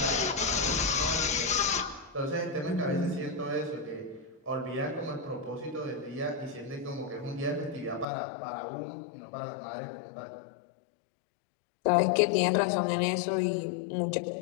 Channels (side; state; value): right; drops out; at 8.1 s